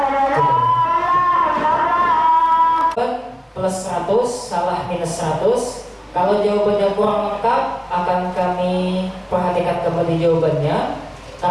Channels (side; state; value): both; identical; correlation 1.00